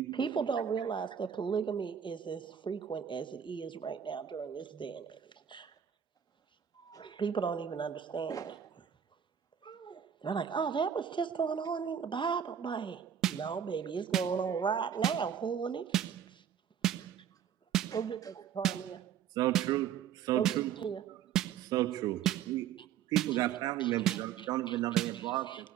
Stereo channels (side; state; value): left; quieter; 8.8 dB